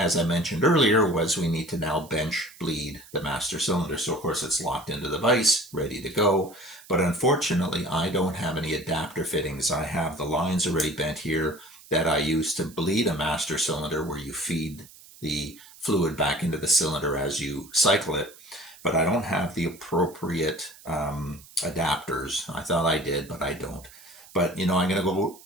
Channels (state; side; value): noise; right; hiss, 21 dB below the sound